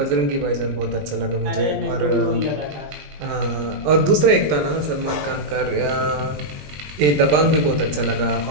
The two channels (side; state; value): left; late; 20 ms